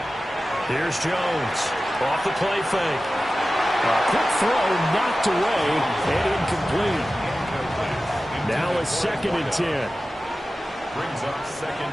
Here's Jones. Off the play fake. A quick throw knocked away and incomplete. Now a 2nd and 10. Brings up 2nd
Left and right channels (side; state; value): both; normal; correlation 0.95